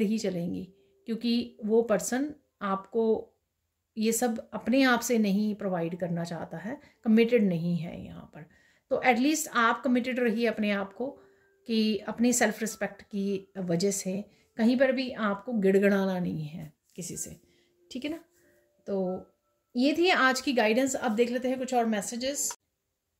ही चलेंगी, क्योंकि वो पर्सन आपको ये सब अपने आप से नहीं प्रोवाइड करना चाहता है, कमिटेड नहीं है यहाँ पर। तो एटलीस्ट आप कमिटेड रहिए अपने आप को, कि अपनी सेल्फ रिस्पेक्ट की वजह से कहीं पर भी आपको गिड़गिड़ाना नहीं है किसी से, ठीक है ना। तो ये थी आज की गाइडेंस। अब देख लेते हैं कुछ और मैसेजेस।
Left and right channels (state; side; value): identical; both; correlation 1.00